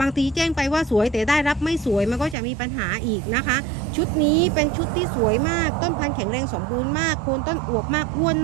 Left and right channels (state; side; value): drops out; left; at 2.4 s